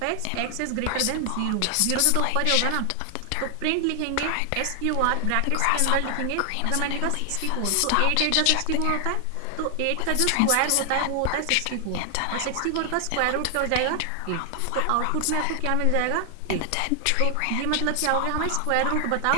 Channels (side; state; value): both; different; correlation 0.00